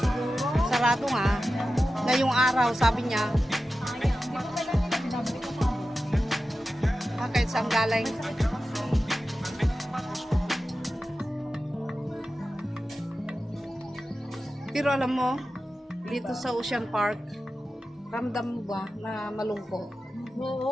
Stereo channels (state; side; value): normal; both; correlation 0.93